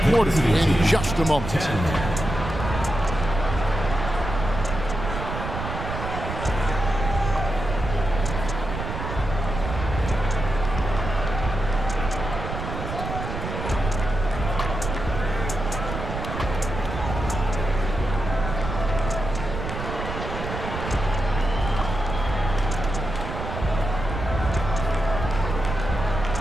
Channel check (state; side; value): noise; right; rumble, 5 dB below the sound